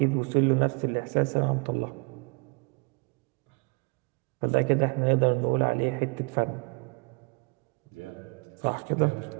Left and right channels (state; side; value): quieter; left; 33.2 dB